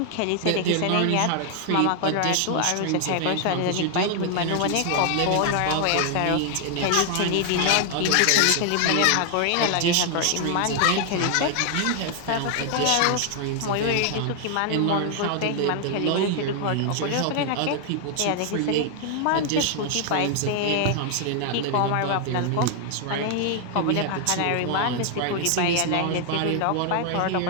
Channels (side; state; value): both; different; correlation 0.00